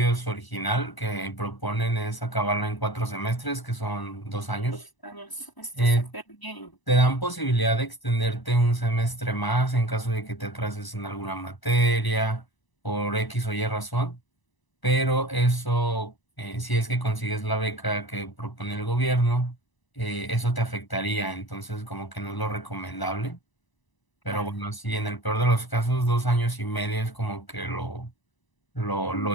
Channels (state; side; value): late; right; 1.0 ms